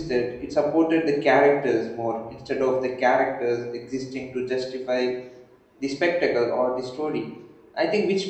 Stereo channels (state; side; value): identical; both; correlation 1.00